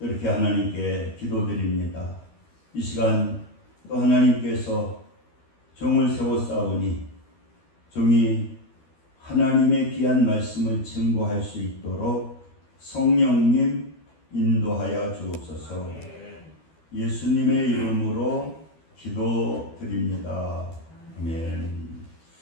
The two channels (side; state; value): right; late; 12 ms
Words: 하나님께 기도드립니다. 이 시간 또 하나님께서 종을 세웠사오니 종이 하나님의 귀한 말씀을 증거할 수 있도록 성령님 인도하여 주옵소서. 예수님의 이름으로 기도드립니다. 아멘.